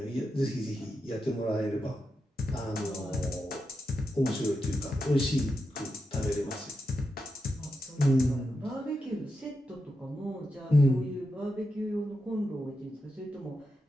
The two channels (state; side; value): normal; both; correlation 0.87